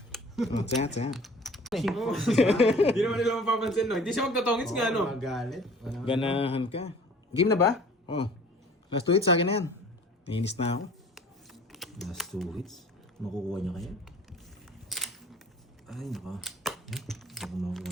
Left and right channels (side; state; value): both; normal; correlation 0.48